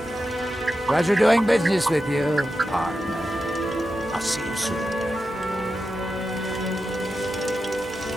you. Pleasure doing business with you, partner. I'll see you soon.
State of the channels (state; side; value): normal; both; correlation 0.90